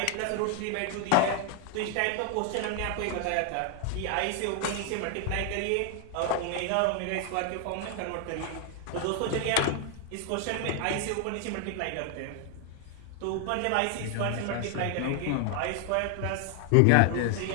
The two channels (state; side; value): different; both; correlation 0.00